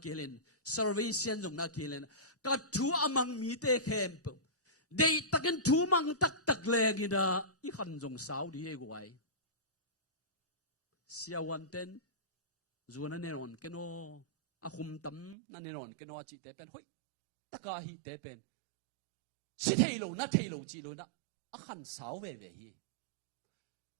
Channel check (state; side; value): drops out; left; at 15.4 s